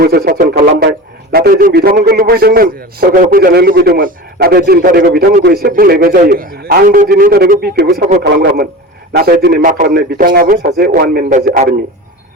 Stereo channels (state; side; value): normal; both; correlation 0.32